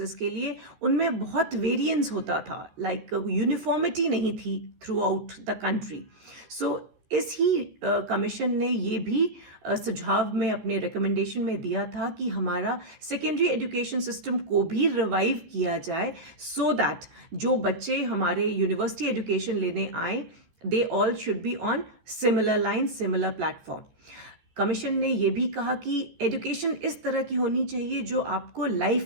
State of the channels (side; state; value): left; late; 14 ms